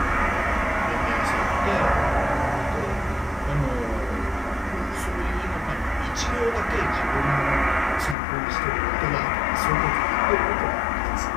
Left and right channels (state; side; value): drops out; right; at 8.2 s